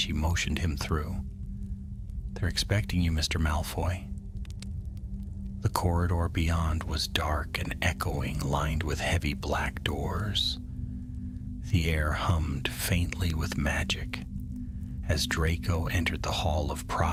motioned him through. "They're expecting you, Mr. Malfoy." The corridor beyond was dark and echoing, lined with heavy black doors. The air hummed faintly with magic. As Draco entered the Hall of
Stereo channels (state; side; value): identical; both; correlation 1.00